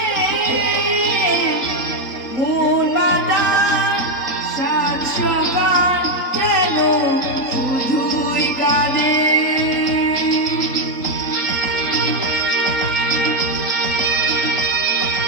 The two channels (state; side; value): late; right; 3.8 ms